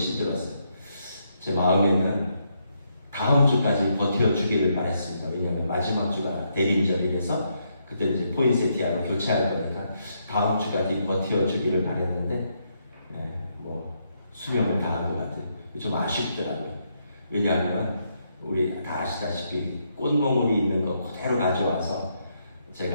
제 마음에는 다음 주까지 버텨주기를 바랬습니다. 왜냐하면 마지막 주가 대림절이라서 그때 이제 포인세티아로 교체할 거니까 다음 주까지 버텨주기를 바랬는데 뭐 수명을 다한 것 같아요. 좀 아쉽더라고요. 왜냐하면 우리 다 아시다시피 꽃몽울이 있는 거 그대로 가져와서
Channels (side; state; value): both; inverted; correlation -0.77